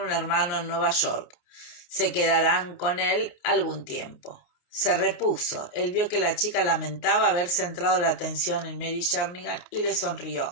un hermano en Nueva York. Se quedarán con él algún tiempo. Se repuso. Él vio que la chica lamentaba haber centrado la atención en Mary Jernigan y le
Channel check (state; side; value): late; right; 29 ms